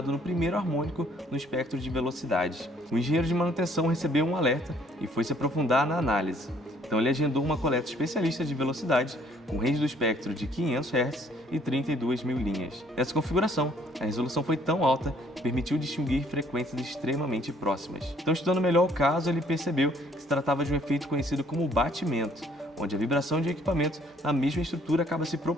no primeiro harmônico no espectro de velocidades. O engenheiro de manutenção recebeu um alerta e foi se aprofundar na análise. Então ele agendou uma coleta especialista de velocidade com range do espectro de 500 Hz e 32.000 linhas. Nessa configuração, a resolução foi tão alta que permitiu distinguir frequências extremamente próximas. Então, estudando melhor o caso, ele percebeu que se tratava de um efeito conhecido como batimento, onde a vibração de equipamentos na mesma estrutura acaba se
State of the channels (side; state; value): both; normal; correlation 0.61